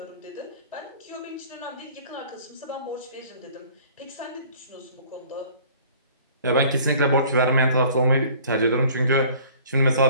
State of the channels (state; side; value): inverted; both; correlation -0.51